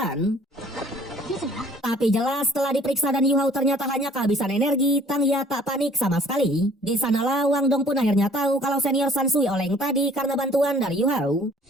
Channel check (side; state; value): both; normal; correlation 0.55